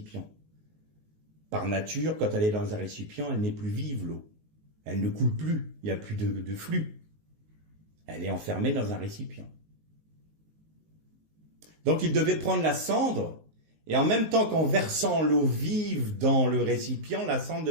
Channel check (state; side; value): late; left; 19 ms